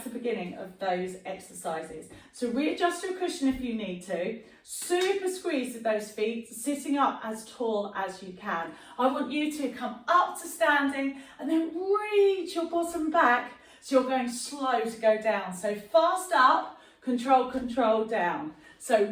to the beginning of those exercises. So readjust your cushion if you need to. Super squeeze with those feet, sitting up as tall as you can. I want you to come up to standing and then reach your bottom back so you're going slow to go down. So fast up, control, control down.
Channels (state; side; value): identical; both; correlation 1.00